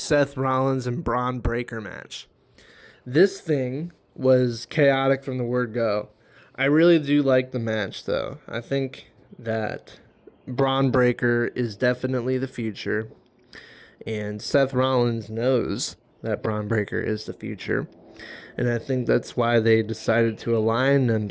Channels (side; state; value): both; identical; correlation 1.00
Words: Rollins and Braun Breaker match. This thing was chaotic from the word go. I really do like the match, though. I think that Braun Breaker is definitely the future, and Seth Rollins knows that Braun Breaker is the future. And I think that's why they decided to align